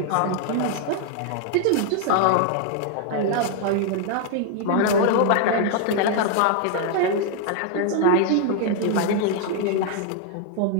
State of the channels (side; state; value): both; different; correlation 0.00